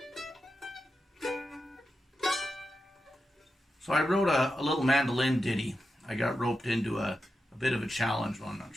So I wrote a little mandolin ditty. I got roped into a bit of a challenge. Well, I'm not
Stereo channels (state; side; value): normal; both; correlation 0.89